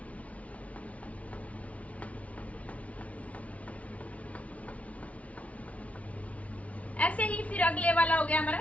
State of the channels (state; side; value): late; right; 0.067 ms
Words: ऐसे ही फिर अगले वाला हो गया